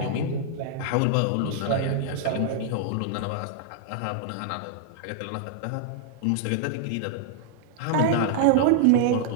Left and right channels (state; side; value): different; both; correlation -0.01